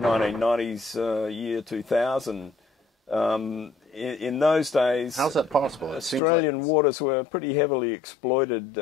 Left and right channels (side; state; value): right; drops out; at 6.2 s